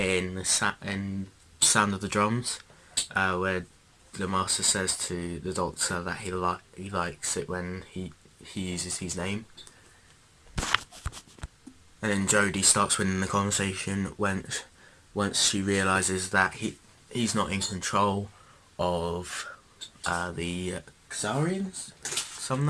in Sound of the Drums, where the master says to the Doctor that he likes it when he uses his name. And then Jodie starts winning the conversation once she realises that he's not in control of the Khazarians, something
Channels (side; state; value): both; identical; correlation 1.00